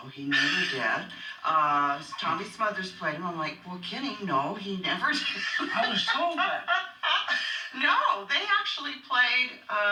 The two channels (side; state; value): both; identical; correlation 1.00